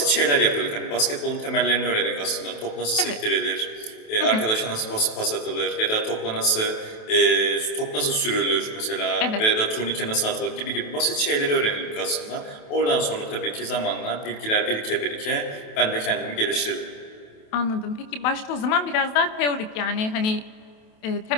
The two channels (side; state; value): right; late; 28 ms